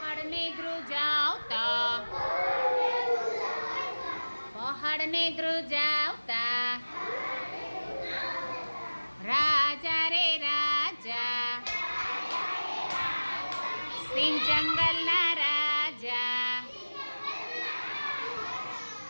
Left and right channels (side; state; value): both; inverted; correlation -1.00